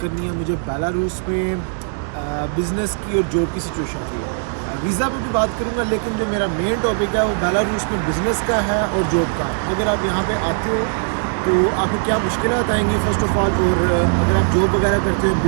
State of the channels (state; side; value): silent; left; 62 dB below the other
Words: है मुझे बेलारूस में बिज़नेस की और जॉब की सिचुएशन की। वीज़ा पे भी बात करूंगा, लेकिन जो मेरा मेन टॉपिक है वो बेलारूस में बिज़नेस का है और जॉब का। अगर आप यहाँ पे आते हो तो आपको क्या मुश्किलात आएंगी फ़र्स्ट ऑफ़ ऑल, और अगर आप जॉब वगैरह करते हो,